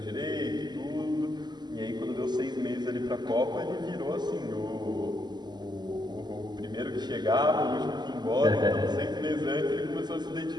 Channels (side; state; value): left; late; 0.21 ms